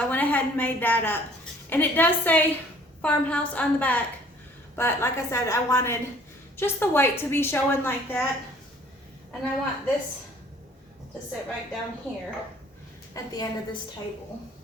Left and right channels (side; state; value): both; normal; correlation 0.56